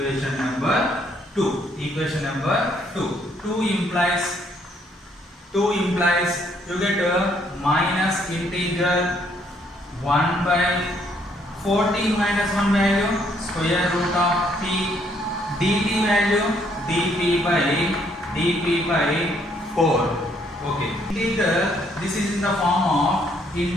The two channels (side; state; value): both; normal; correlation 0.68